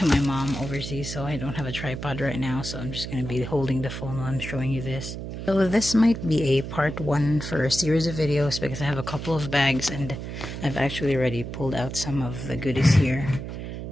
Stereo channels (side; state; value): right; noise; hum, 7 dB below the sound